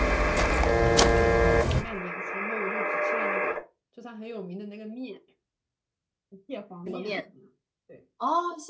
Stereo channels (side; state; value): both; identical; correlation 1.00